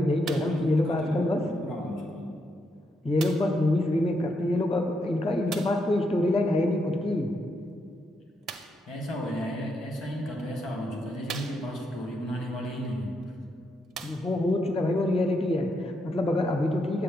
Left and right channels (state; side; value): normal; both; correlation 0.80